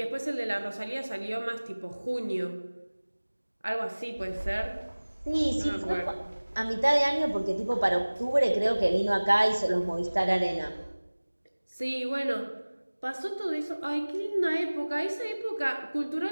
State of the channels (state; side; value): inverted; both; correlation -1.00